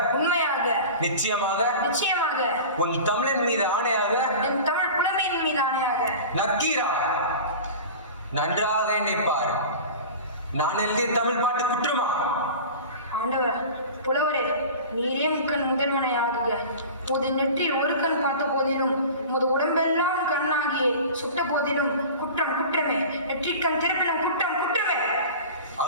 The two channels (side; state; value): both; inverted; correlation -0.36